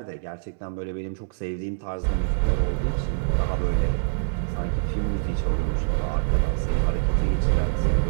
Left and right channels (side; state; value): left; silent; 62 dB below the other